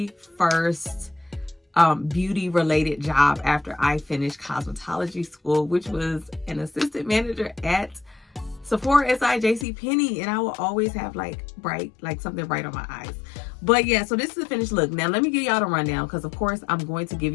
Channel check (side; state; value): right; drops out; at 9.7 s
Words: first beauty related job after I finished cosmetology school, which was an assistant manager at Sephora, JCPenney, and I will always have like something bright on my eyes. But yeah, so this is the finished look. Now let me give y'all the rundown, because of course I'm going to give